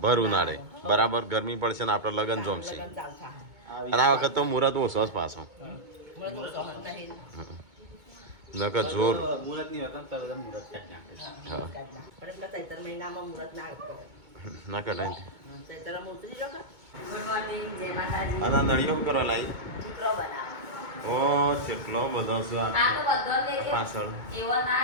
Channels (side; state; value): left; late; 2.2 ms